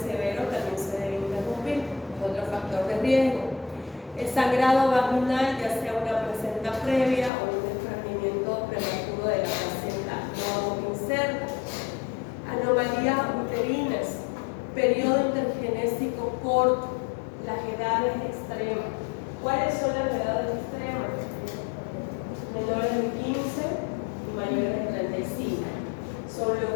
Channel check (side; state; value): right; drops out; at 7.3 s